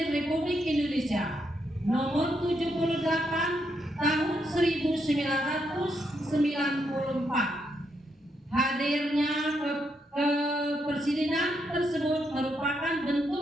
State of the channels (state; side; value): normal; both; correlation 0.79